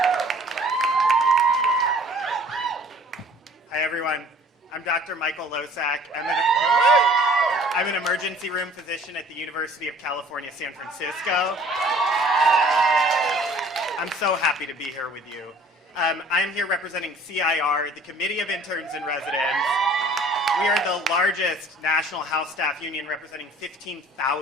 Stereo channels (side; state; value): both; normal; correlation 0.52